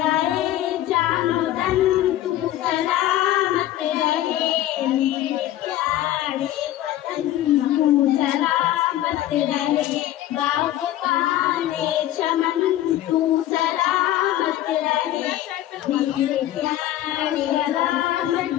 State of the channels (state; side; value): quieter; right; 13.5 dB